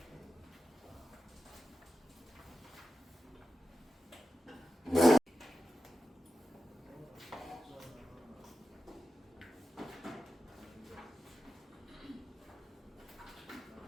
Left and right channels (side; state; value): both; normal; correlation 0.91